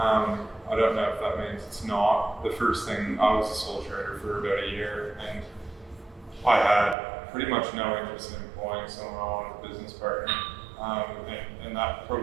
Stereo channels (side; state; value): left; drops out; at 7.0 s